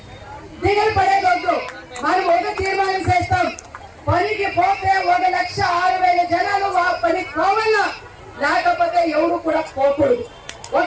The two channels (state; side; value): identical; both; correlation 1.00